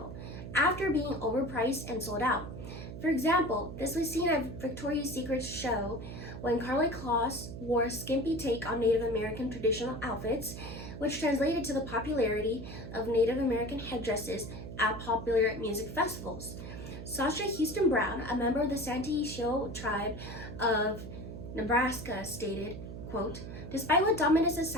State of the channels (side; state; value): right; noise; hum, 9 dB below the sound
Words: after being overpriced and sold out. For example, this was seen at Victoria's Secret's show when Karlie Kloss wore a skimpy take on Native American traditional outfits, which translated to the popularity of Native American headdresses at popular music festivals. Sasha Houston Brown, a member of the Santee Sioux tribe of Nebraska, stated, quote, "Despite what dominant